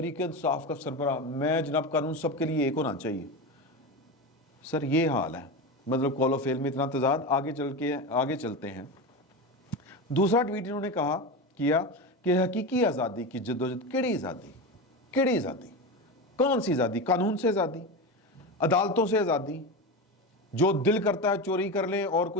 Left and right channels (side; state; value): both; normal; correlation 0.21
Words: انصاف کا سربراہ. میں جناب قانون سب کے لیے ایک ہونا چاہیے. سر یہ حال ہے, مطلب قول و فعل میں اتنا تضاد. آگے چلتے ہیں. دوسرا ٹویٹ انہوں نے کیا کہ حقیقی آزادی کی جدوجہد. کیڑی آزادی؟ کون سی آزادی؟ قانون سے آزادی, عدالتوں سے آزادی. جو دل کرتا ہے چوری کر لیں اور